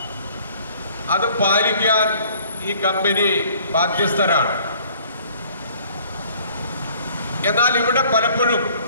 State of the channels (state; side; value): inverted; both; correlation -0.56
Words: അത് പാലിക്കാൻ ഈ കമ്പനി ബാധ്യസ്ഥരാണ്. എന്നാൽ ഇവിടെ പലപ്പോഴും